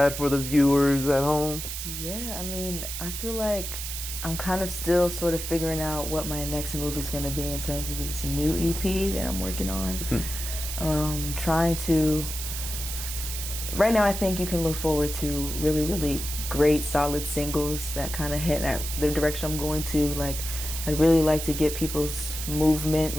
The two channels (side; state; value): right; noise; hiss, 6 dB below the sound